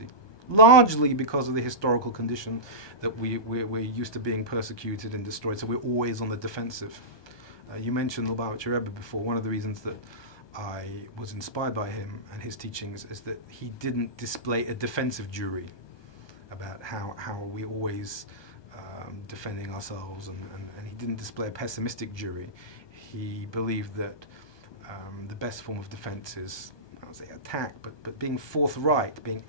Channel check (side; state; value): right; late; 1.2 ms